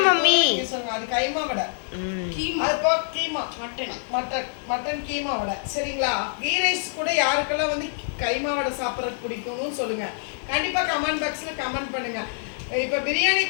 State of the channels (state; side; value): silent; right; digital silence